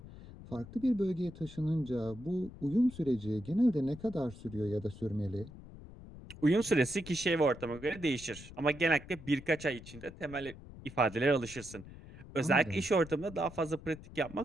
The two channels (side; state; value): left; noise; rumble, 16 dB below the sound